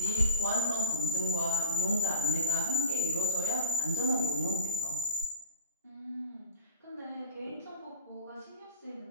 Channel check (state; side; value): inverted; both; correlation -0.39